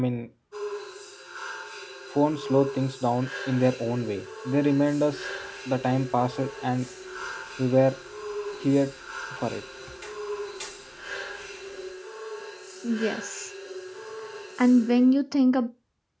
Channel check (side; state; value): both; identical; correlation 1.00